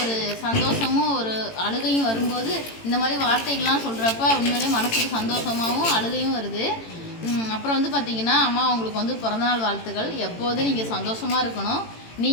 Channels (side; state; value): right; late; 18 ms